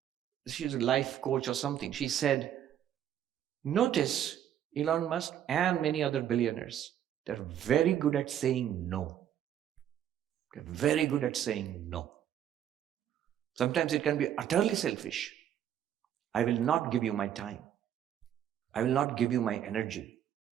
she's a life coach or something, she said, notice Elon Musk and many other billionaires, they're very good at saying no. They're very good at saying no. Sometimes it can be utterly selfish. I will not give you my time. I will not give you my energy.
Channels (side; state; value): left; quieter; 10.3 dB